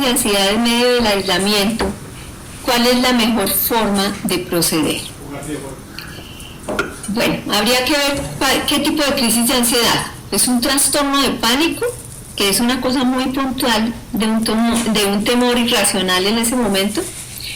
de ansiedad en medio del aislamiento, ¿cuál es la mejor forma de proceder? Bueno, habría que ver qué tipo de crisis de ansiedad. ¿Es un trastorno de pánico, que es una cosa muy puntual de un temor irracional en ese momento?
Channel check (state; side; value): identical; both; correlation 1.00